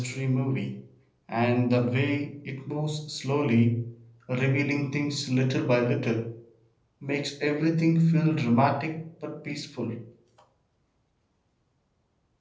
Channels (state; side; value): identical; both; correlation 1.00